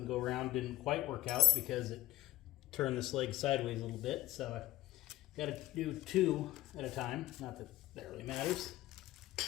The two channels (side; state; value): right; quieter; 15.1 dB